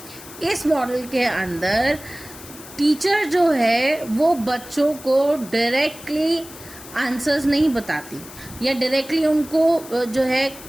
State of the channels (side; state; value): left; noise; hiss, 17 dB below the sound